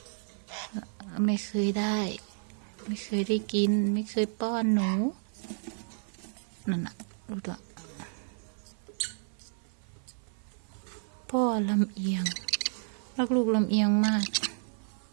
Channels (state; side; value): silent; left; 57 dB below the other